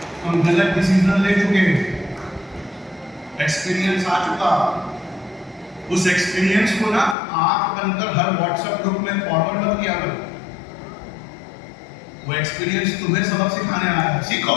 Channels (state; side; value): drops out; right; at 7.2 s